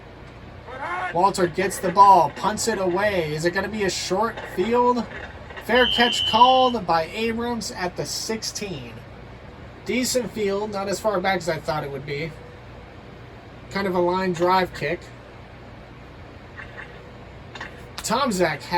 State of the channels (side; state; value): both; identical; correlation 1.00